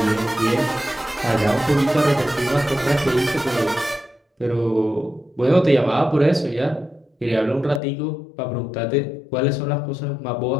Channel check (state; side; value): drops out; right; at 7.8 s